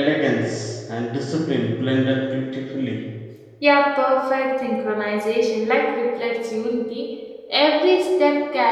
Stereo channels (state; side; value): identical; both; correlation 1.00